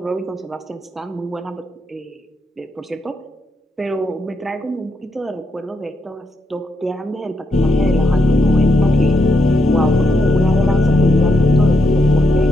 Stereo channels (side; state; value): both; normal; correlation 0.81